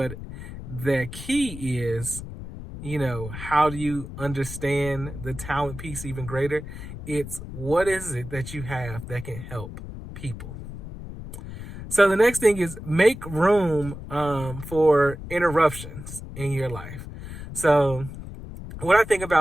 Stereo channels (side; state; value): left; noise; rumble, 11 dB below the sound